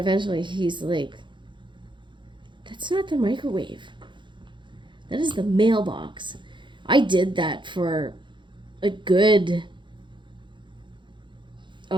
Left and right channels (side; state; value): left; late; 0.23 ms